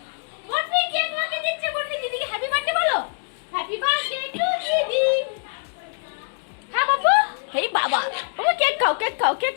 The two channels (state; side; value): silent; right; digital silence